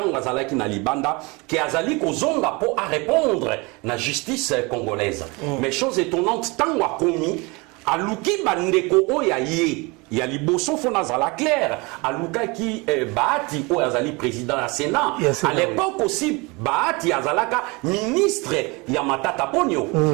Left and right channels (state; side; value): quieter; left; 26.7 dB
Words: zalaki na libanda ki azali kozonga po a répondre na justice congolaise. Mais chose étonnante tanga komi aluki bandeko oya ye ya liboso fona zala clair aluka ki Bahati o azali président du Sénat. À l'époque aussi Bahati azalaka ministre ya Matata Ponyo.